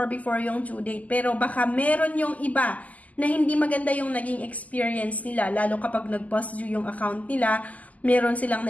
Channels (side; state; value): right; late; 0.076 ms